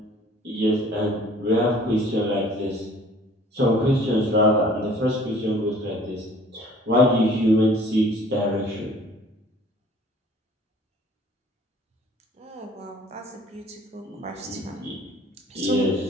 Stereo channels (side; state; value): both; normal; correlation 0.53